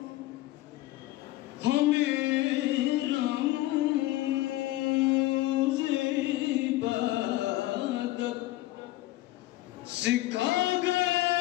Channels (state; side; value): quieter; right; 17.1 dB